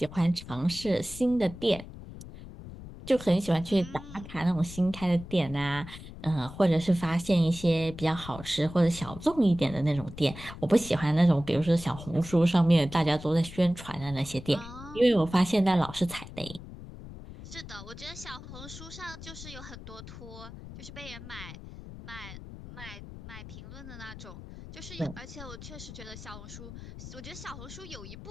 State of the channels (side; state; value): left; noise; rumble, 13 dB below the sound